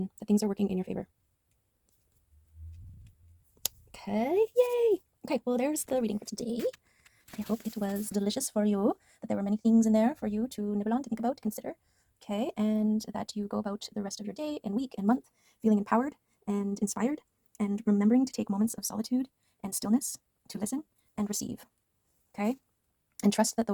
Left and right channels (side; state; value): both; identical; correlation 1.00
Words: that things are working in your favor. Okay, yay. Okay, well, there's the reading for today. I hope it was delicious for you, that there were many things in there for you to nibble on, to think about, to consider. Okay, and that you go about the rest of your day and week and month feeling empowered and inspired, and remembering to take moments of solitude and stillness to listen and receive. Okay, and trust that